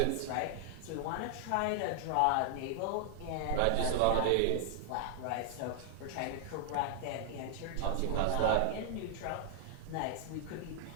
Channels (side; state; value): both; different; correlation 0.00